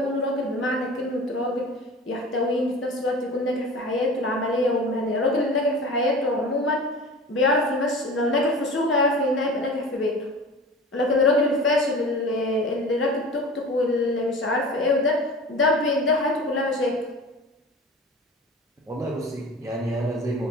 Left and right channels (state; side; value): normal; both; correlation 0.37